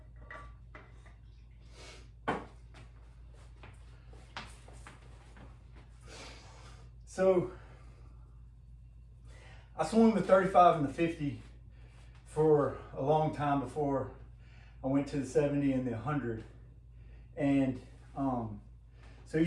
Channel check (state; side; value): identical; both; correlation 1.00